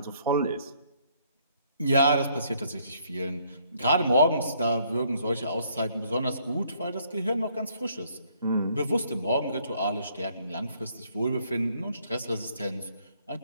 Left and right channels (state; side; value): inverted; both; correlation -0.67